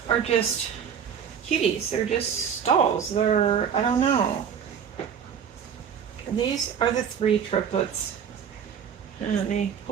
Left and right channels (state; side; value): quieter; left; 7.8 dB